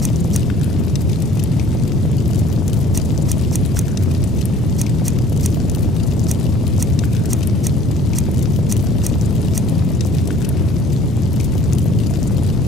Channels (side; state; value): both; normal; correlation 0.53